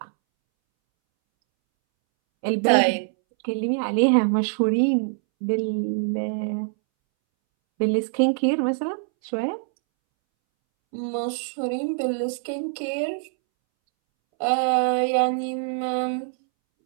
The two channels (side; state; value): left; silent; 63 dB below the other